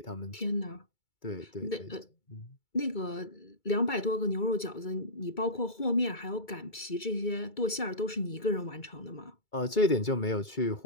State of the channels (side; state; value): right; late; 2.3 ms